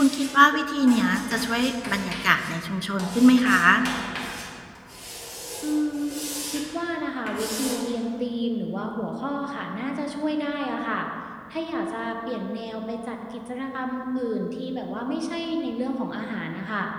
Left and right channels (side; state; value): both; identical; correlation 1.00